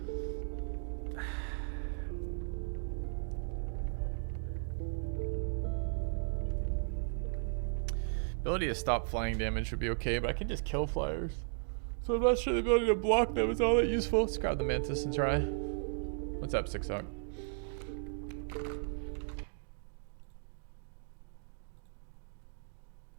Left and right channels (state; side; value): silent; left; digital silence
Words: Ability to stop flying damage would be okay, but I can just kill flyers. So I'm not sure the ability to block them is all that useful. Let's grab the mantis and try. What's up, Six Hawk?